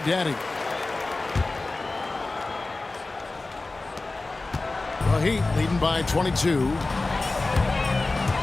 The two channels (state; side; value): quieter; right; 3.3 dB